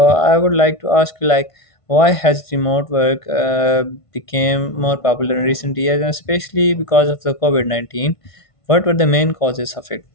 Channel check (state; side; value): late; right; 1.5 ms